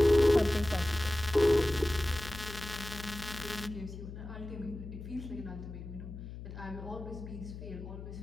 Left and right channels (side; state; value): left; noise; hum, 11 dB below the sound